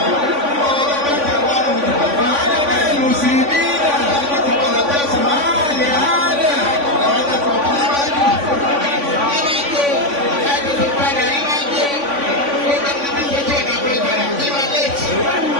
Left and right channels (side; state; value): left; late; 3.5 ms